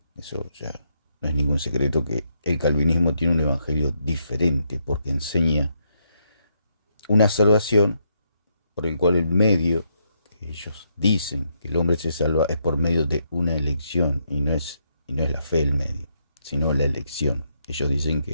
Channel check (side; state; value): both; inverted; correlation -0.77